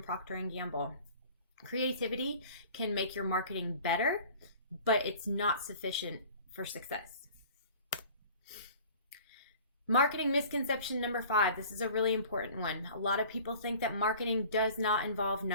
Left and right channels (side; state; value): both; inverted; correlation -0.46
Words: Procter & Gamble. Creativity can make your marketing better, but it's not sufficient for success. Marketing misconception number 5. This is a really important one. A lot of people think that marketing does not involve